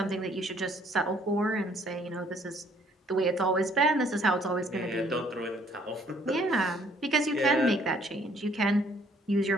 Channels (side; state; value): both; normal; correlation 0.62